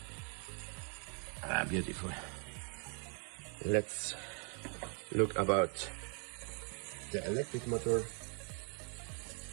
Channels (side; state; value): left; quieter; 38.8 dB